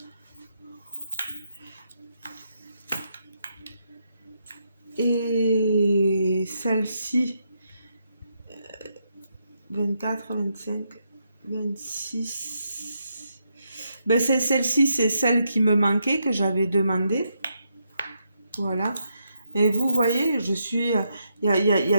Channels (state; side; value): inverted; both; correlation -0.80